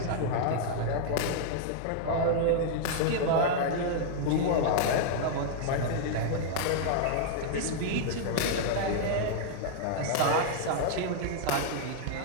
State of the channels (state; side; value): different; both; correlation -0.01